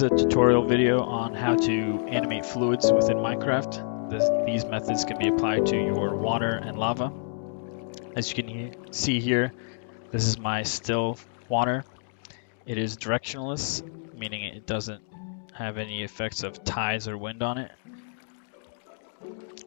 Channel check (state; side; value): silent; right; digital silence